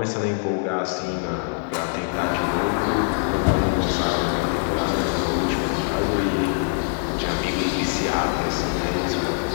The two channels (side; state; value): right; silent; 63 dB below the other